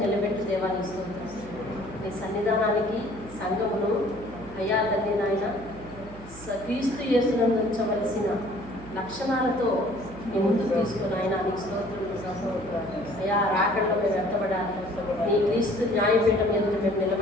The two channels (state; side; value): noise; right; hum, 16 dB below the sound